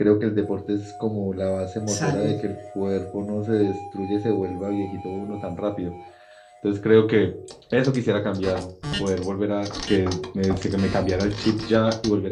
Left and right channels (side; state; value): both; identical; correlation 1.00